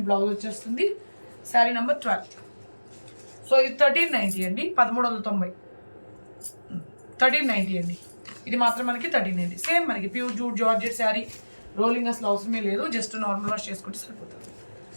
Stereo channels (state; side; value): inverted; both; correlation -1.00